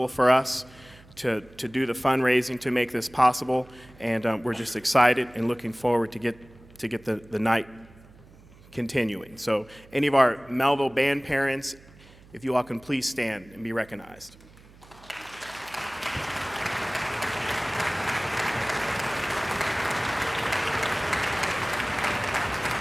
for us to do the fundraising to make this possible, and we're just excited and looking forward to get the night continuing. So any of our Mehlville band parents, if you all can please stand and be recognized.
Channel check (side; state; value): right; noise; hum, 24 dB below the sound